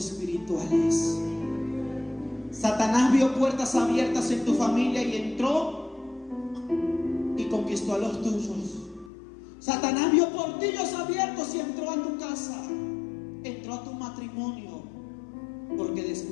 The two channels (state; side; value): drops out; right; at 9.1 s